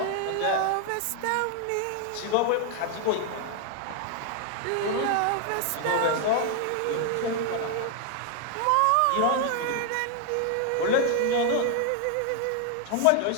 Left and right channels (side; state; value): both; different; correlation 0.00